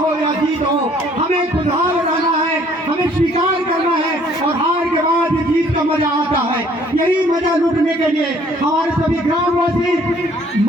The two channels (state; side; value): normal; both; correlation 0.59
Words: या जीत हो, हमें खुशहाल रहना है, हमें स्वीकार करना है और हार के बाद जीत का मजा आता है। यही मजा लूटने के लिए हमारे सभी ग्रामवासी,